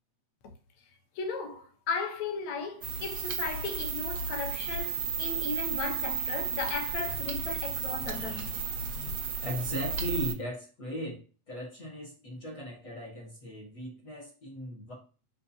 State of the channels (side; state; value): right; late; 8.2 ms